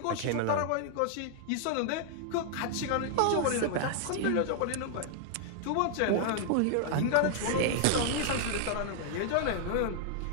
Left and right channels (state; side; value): different; both; correlation 0.00